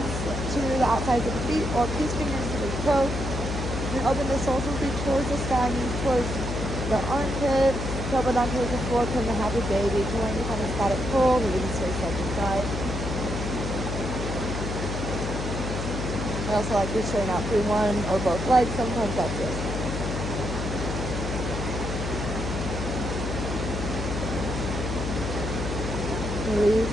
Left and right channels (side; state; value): left; noise; hum, 4 dB below the sound